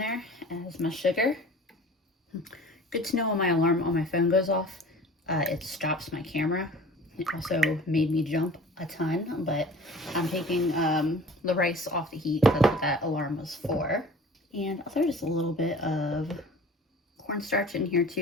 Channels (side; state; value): both; normal; correlation 0.44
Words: as my sugar. Good to know when my alarm on my phone goes off, it stops my camera. It also made me jump a ton, but I'm taking the rice off the heat. That's what that alarm was for. And I'll throw just a little bit of cornstarch in here